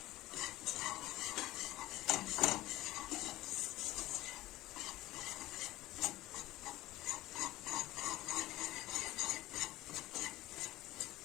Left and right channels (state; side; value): quieter; right; 17.1 dB